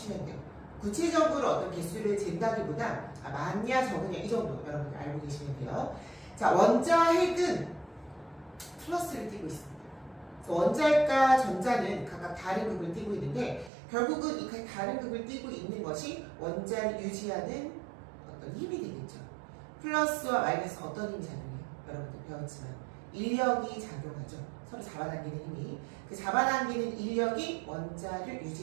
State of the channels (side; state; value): left; drops out; at 13.7 s